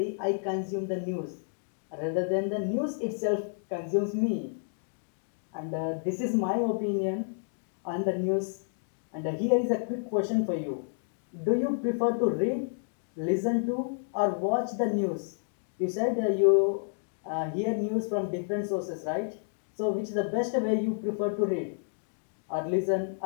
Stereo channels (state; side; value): silent; right; digital silence